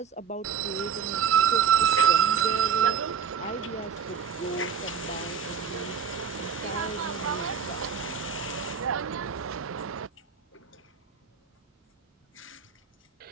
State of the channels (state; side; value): quieter; left; 7.2 dB